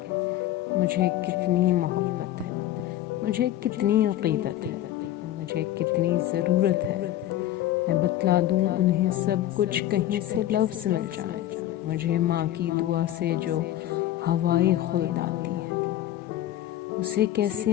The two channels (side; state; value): right; quieter; 13.2 dB